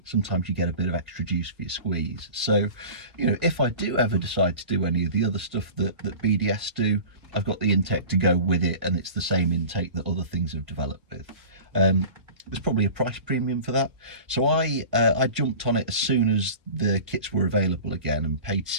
sometimes you get a bit of extra juice for your squeeze. So, you know, if I do ever decide to do any of the other stuff that BDS do, I've got the intake to go with it, and it's the same intake that other things have developed with. There's probably a price premium for that. So I jumped on it as soon as the kits were available again and paid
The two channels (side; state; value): left; late; 1.6 ms